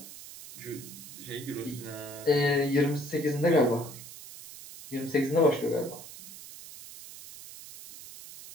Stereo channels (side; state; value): right; noise; hiss, 15 dB below the sound